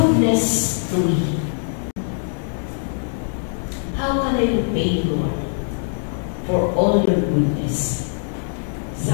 to me? How can I repay you, Lord, for all your goodness?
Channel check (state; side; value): silent; right; digital silence